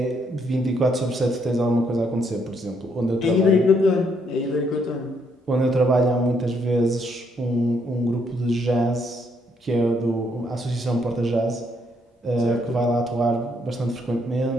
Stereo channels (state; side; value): normal; both; correlation 0.72